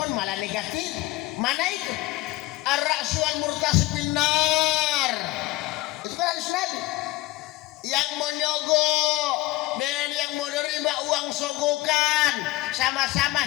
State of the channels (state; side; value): quieter; right; 18.8 dB